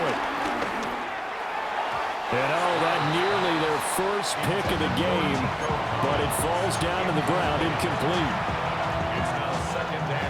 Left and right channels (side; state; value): both; identical; correlation 1.00